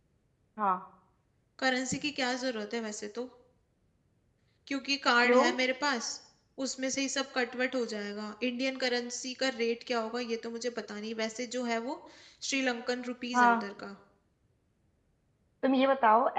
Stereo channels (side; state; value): both; identical; correlation 1.00